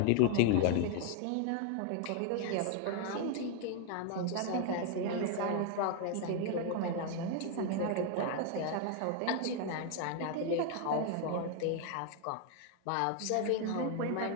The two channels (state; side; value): different; both; correlation 0.00